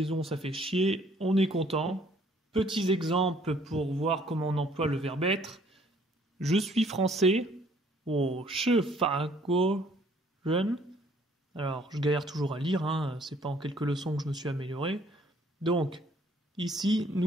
ça fait chier, on est content. Petits exemples pour voir comment on emploie le verbe être. Je suis français, je fa guo ren. Alors je galère toujours à lire, hein. C'est pas en quelques leçons que je me suis amélioré. Donc, ici,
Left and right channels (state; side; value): normal; both; correlation 0.61